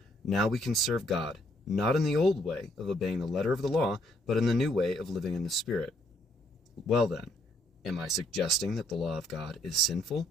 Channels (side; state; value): both; normal; correlation 0.69